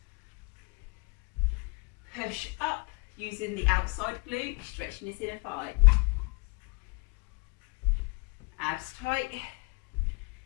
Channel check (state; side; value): quieter; right; 30.6 dB